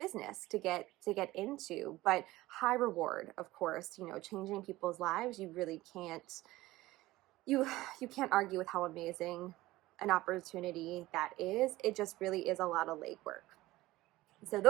to get into, but high reward, of course. Changing people's lives, you really can't you can't argue with how amazing an opportunity that is. It just really is a lot of legwork. So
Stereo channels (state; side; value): quieter; left; 17.9 dB